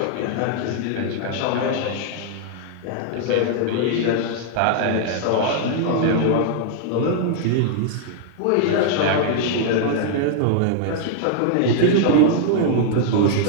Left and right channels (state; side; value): different; both; correlation 0.00